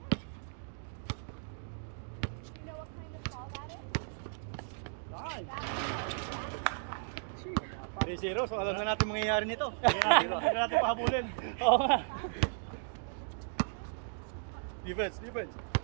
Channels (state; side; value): silent; left; digital silence